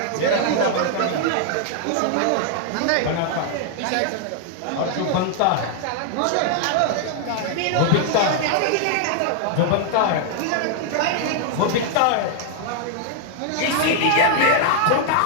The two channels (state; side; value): different; both; correlation 0.00